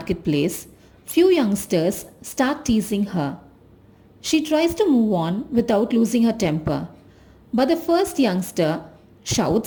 few youngsters start teasing her. She tries to move on without losing her temper. But the first youngster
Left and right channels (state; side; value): identical; both; correlation 1.00